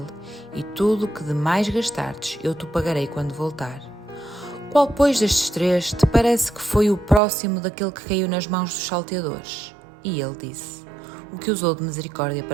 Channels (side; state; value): left; drops out; at 7.2 s